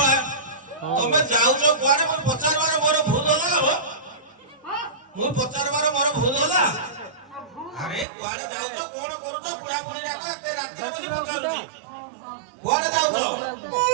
तमे जाओ जो कुआरे मैं 50 बार मोर भूल होला हो मु 50 बार मोर भूल होला अरे कुआरे जाओ जो कोन करू तो पुरा पुरी राखो एते रात्रि में पहुंची कुआरे जाओ जो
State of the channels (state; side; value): drops out; left; at 8.1 s